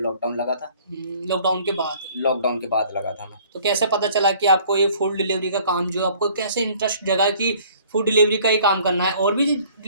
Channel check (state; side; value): inverted; both; correlation -0.55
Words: लगा था। लॉकडाउन के बाद? लॉकडाउन के बाद लगा था मैं। तो कैसे पता चला कि आपको ये फूड डिलीवरी का काम, जो आपको कैसे इंटरेस्ट जगा कि फूड डिलीवरी का ही काम करना है? और भी